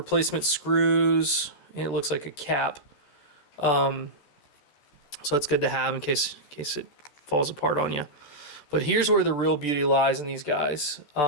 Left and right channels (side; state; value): right; late; 14 ms